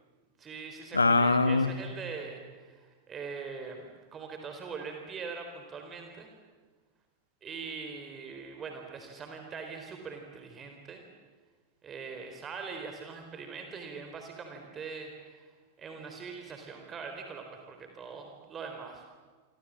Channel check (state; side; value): inverted; both; correlation -0.61